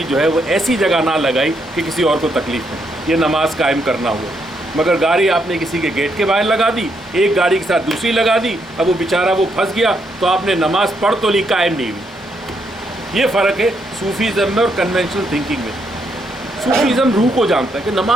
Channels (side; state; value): both; normal; correlation 0.77